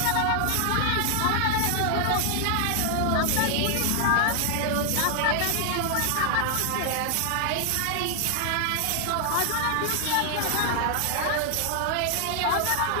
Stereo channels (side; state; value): both; different; correlation 0.00